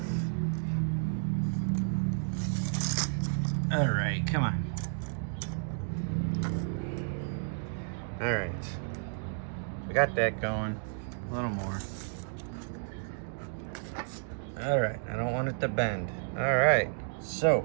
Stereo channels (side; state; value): left; silent; digital silence